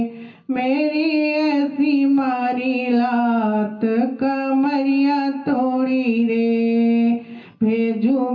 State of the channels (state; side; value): identical; both; correlation 1.00